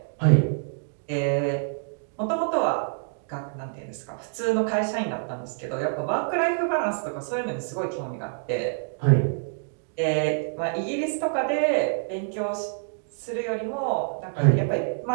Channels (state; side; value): silent; left; digital silence